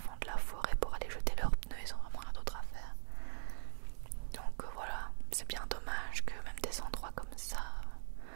de la forêt, pour aller jeter leurs pneus. Ils ont vraiment rien d'autre à faire. Donc voilà, c'est bien dommage que même des endroits comme ça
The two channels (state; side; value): silent; left; 51 dB below the other